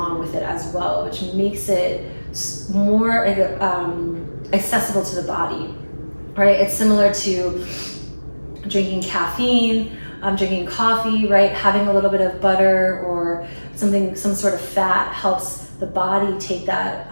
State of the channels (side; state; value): both; inverted; correlation -1.00